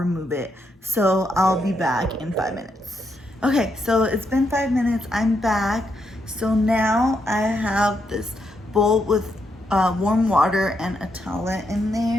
it. So I'll be back in 5 minutes. Okay, so it's been 5 minutes. I'm back. So now I have this bowl with warm water and a towelette in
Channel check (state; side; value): normal; both; correlation 0.79